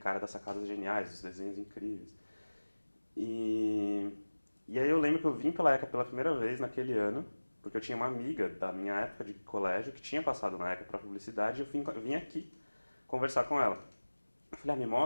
das sacadas geniais, dos desenhos incríveis. E, e aí eu lembro que eu vim pela ECA pela primeira vez naquele ano, porque eu tinha uma amiga da minha época de colégio que tinha passado na ECA para publicidade e eu vim aqui conversar com ela. Eu falei, me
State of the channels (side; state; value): both; inverted; correlation -1.00